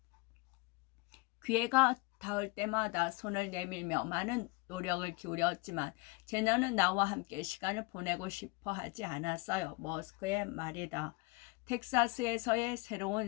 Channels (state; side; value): quieter; right; 26.1 dB